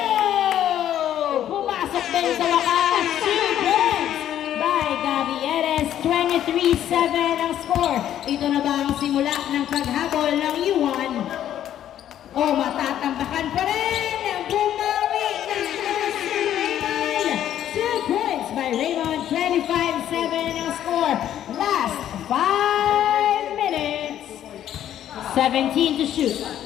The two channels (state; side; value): quieter; right; 11.1 dB